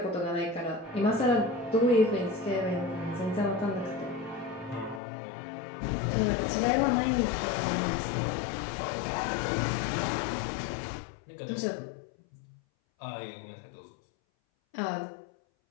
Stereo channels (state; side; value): drops out; right; at 5.0 s